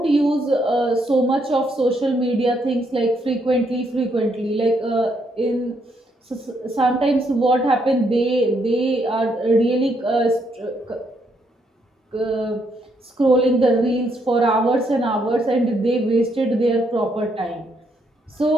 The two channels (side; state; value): both; normal; correlation 0.75